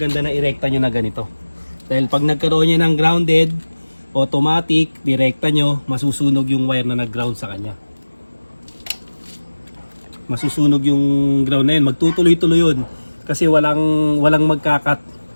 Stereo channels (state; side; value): inverted; both; correlation -1.00